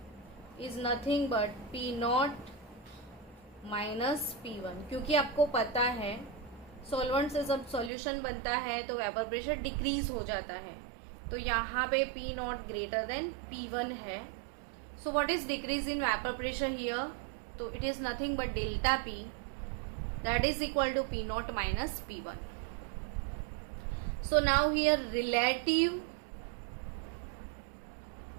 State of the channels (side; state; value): left; drops out; at 7.9 s